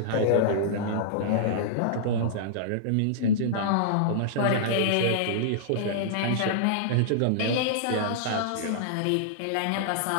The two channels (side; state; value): both; different; correlation -0.02